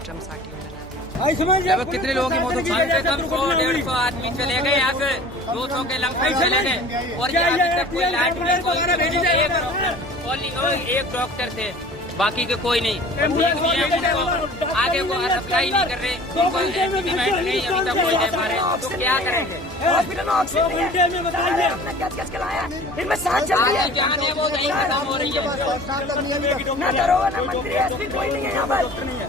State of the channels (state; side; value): normal; both; correlation 0.44